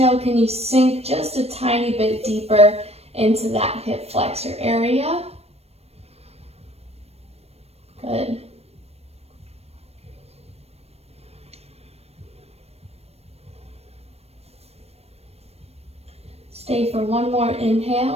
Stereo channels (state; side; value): late; left; 0.30 ms